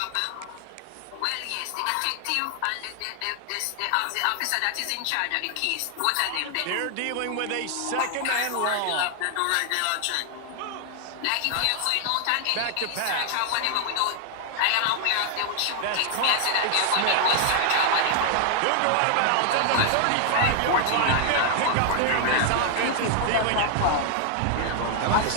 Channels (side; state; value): both; different; correlation 0.00